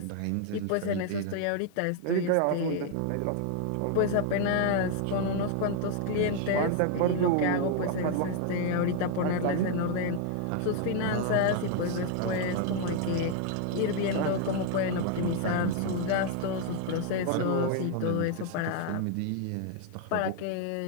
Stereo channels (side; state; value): both; different; correlation 0.00